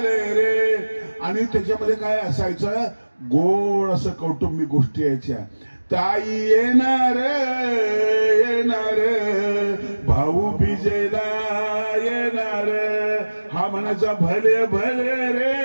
रे. आणि त्याच्यामध्ये काय असायचं, गोड असं कौटुंबिक गोष्टी यायच्या. ताई येणार येणार, भाऊ बिजेला येणार. हा म्हणायचा भले भले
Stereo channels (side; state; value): both; inverted; correlation -1.00